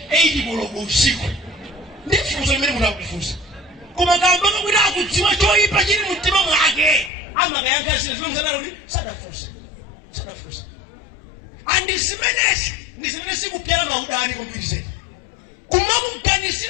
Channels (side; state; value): right; drops out; at 7.1 s